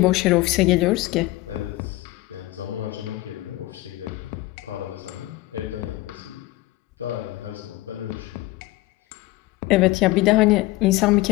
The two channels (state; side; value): quieter; right; 18.7 dB